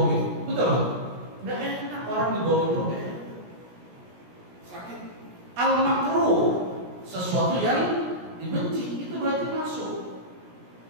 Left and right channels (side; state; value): left; late; 17 ms